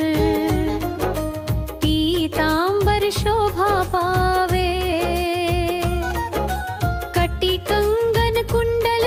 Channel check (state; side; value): identical; both; correlation 1.00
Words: पीतांबर शोभा पावे। कटी कंगन कुंडल